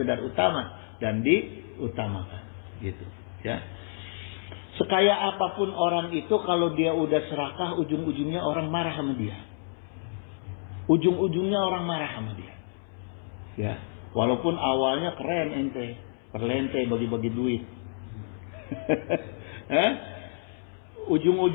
utama, dan diutamakan, gitu, ya. Sekaya apapun orang itu, kalau dia udah serakah, ujung-ujungnya orang marah sama dia. Ujung-ujungnya orang marah sama dia. Ya, walaupun awalnya keren ente, perlente bagi-bagi duit.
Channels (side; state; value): right; silent; 59 dB below the other